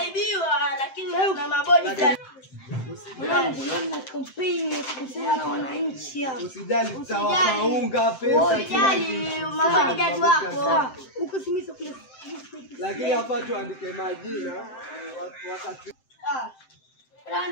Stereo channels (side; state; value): right; late; 7.7 ms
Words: lakini na mabodi Mwanangu na kampeni kuhusiana na wananchi hapa. Usijali tutawaunga pesa. Usijali mabodi wako. Huko simisa kule. Lakini hapa tuandike majina wakati